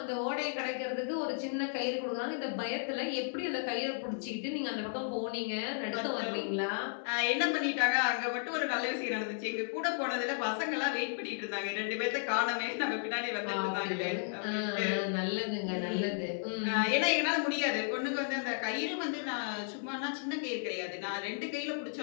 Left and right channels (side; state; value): right; silent; 55 dB below the other